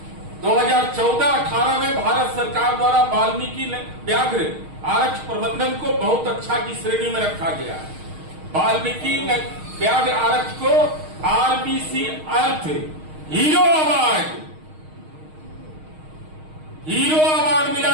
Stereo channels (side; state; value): left; late; 6.4 ms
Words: 2014-18 में भारत सरकार द्वारा वाल्मीकि व्याघ्र आरक्ष प्रबंधन को बहुत अच्छा की श्रेणी में रखा गया। वाल्मीकि व्याघ्र आरक्ष को आरबीसी अर्थ हीरो अवार्ड मिला